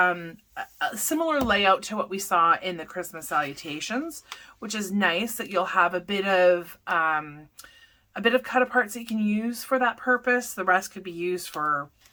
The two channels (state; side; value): identical; both; correlation 1.00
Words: similar layout to what we saw in the Christmas salutations, which is nice that you'll have a bit of cut aparts that you can use for that purpose. The rest could be used for,